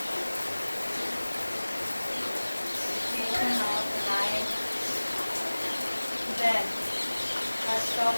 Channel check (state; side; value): inverted; both; correlation -1.00